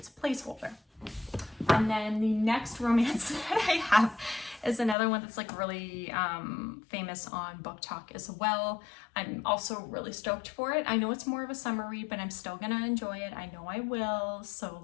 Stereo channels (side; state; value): right; drops out; at 5.0 s